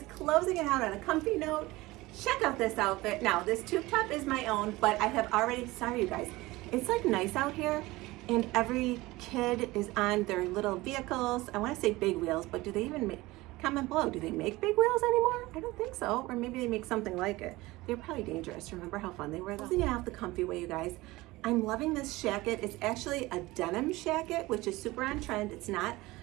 closing it out on a comfy note. Check out this outfit. Now, this tube top is my own, but I have already, sorry you guys, it's like nice out here and every kid is on their little vehicles. I wanna say big wheels, but do they even make, comment below, do they make big wheels anymore? I don't think so, or maybe they make something like it. They're probably dangerous. Remember how fun they were though? Closing it out the comfy way, you guys. I'm loving this jacket. It's actually a denim jacket, which is super on trend. It's not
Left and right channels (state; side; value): quieter; left; 20.0 dB